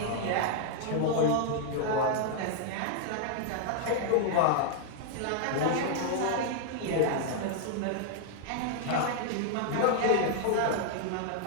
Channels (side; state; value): both; different; correlation 0.00